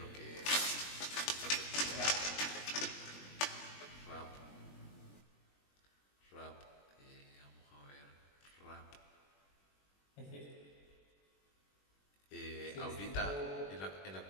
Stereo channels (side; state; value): right; late; 21 ms